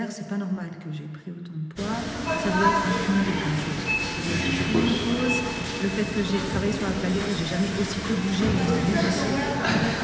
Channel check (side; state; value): both; identical; correlation 1.00